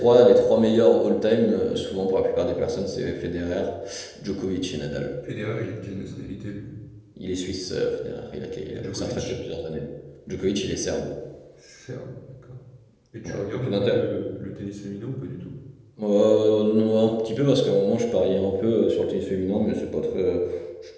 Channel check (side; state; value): both; identical; correlation 1.00